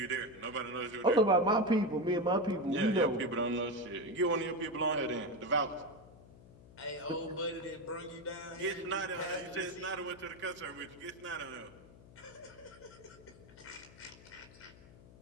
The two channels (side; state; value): left; noise; hum, 21 dB below the sound